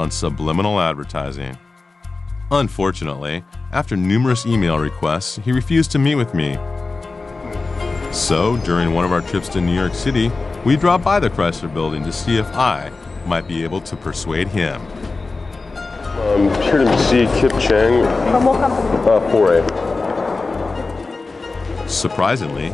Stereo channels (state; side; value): quieter; right; 3.8 dB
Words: subliminal advertising. Unfortunately, after numerous email requests, he refused to meet with me. So, during one of our trips to New York City, we dropped by the Chrysler Building to see if I might be able to persuade him. I'm here to see Kip Chang. From what company? 4A. Surprisingly,